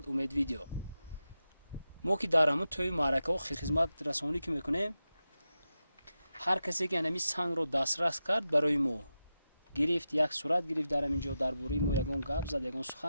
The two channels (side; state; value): both; inverted; correlation -0.91